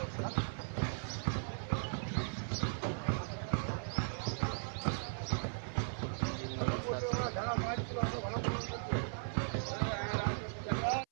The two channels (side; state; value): left; silent; 53 dB below the other